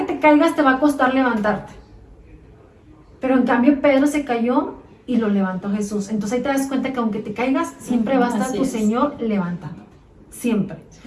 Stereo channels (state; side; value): identical; both; correlation 1.00